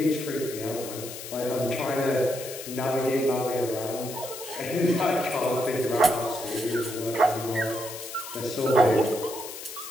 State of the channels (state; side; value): noise; left; hiss, 10 dB below the sound